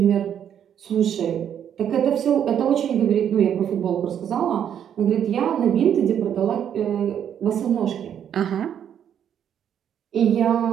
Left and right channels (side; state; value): left; quieter; 9.2 dB